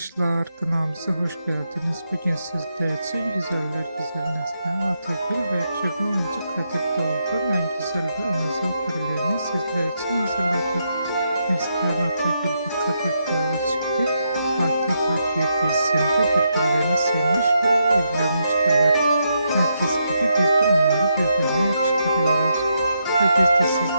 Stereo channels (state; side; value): inverted; both; correlation -0.80